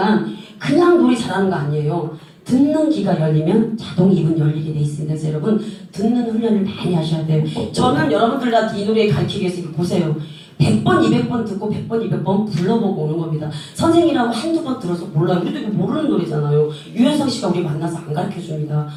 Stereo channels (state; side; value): identical; both; correlation 1.00